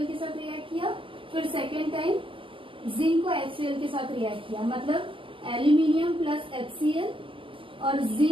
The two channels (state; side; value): late; left; 0.25 ms